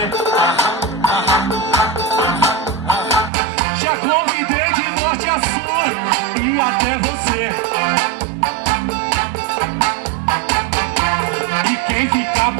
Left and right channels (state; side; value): drops out; left; at 3.3 s